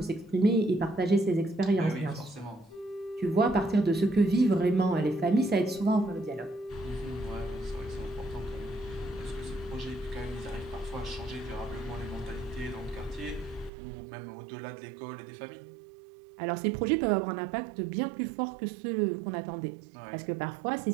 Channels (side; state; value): left; drops out; at 13.7 s